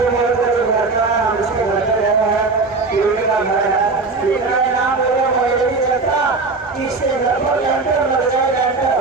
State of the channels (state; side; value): quieter; left; 3.9 dB